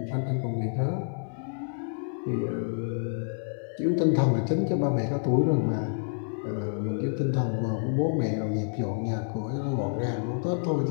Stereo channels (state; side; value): silent; right; digital silence